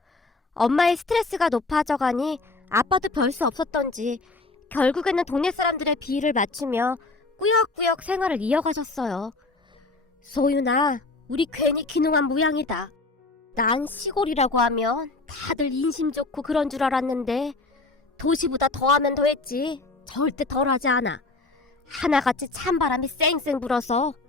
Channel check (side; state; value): right; quieter; 3.4 dB